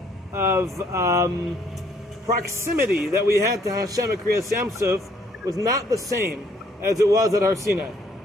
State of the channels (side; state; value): both; normal; correlation 0.65